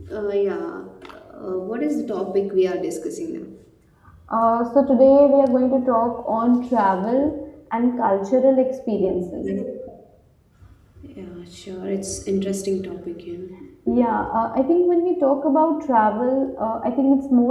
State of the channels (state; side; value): identical; both; correlation 1.00